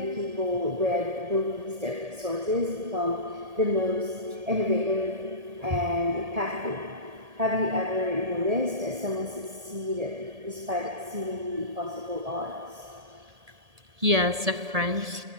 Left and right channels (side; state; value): left; late; 1.8 ms